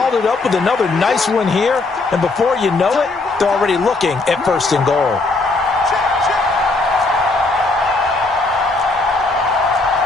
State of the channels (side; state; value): right; quieter; 3.4 dB